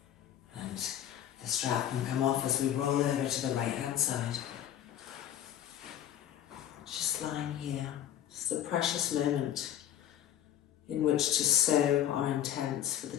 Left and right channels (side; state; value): right; quieter; 11.0 dB